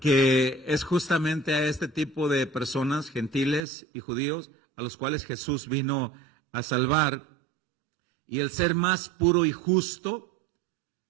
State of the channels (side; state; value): left; drops out; at 3.7 s